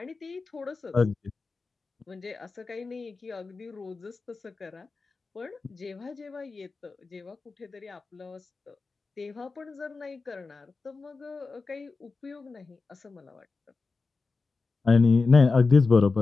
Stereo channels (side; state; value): right; quieter; 4.1 dB